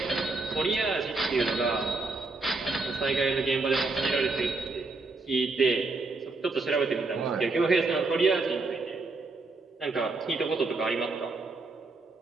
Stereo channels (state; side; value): quieter; left; 3.6 dB